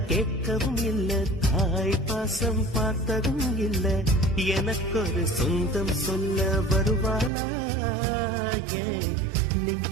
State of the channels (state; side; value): drops out; left; at 7.3 s